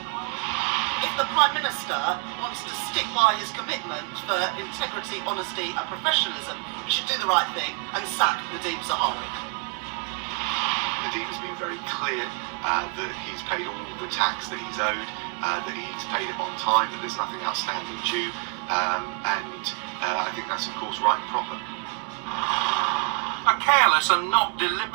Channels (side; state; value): left; quieter; 31.9 dB